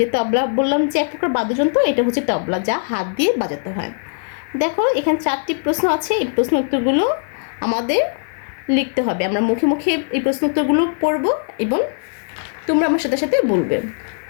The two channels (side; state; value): right; silent; 66 dB below the other